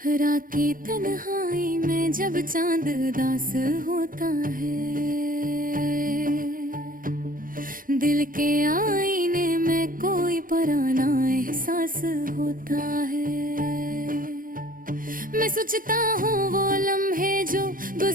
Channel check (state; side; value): late; left; 0.40 ms